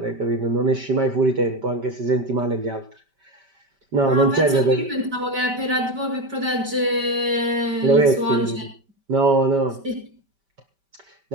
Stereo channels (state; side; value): late; left; 5.1 ms